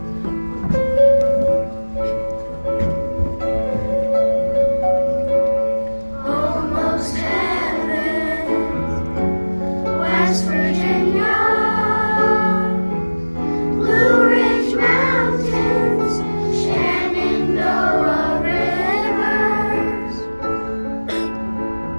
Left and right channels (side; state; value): both; inverted; correlation -1.00